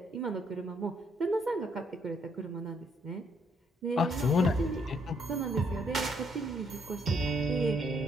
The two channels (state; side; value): normal; both; correlation 0.70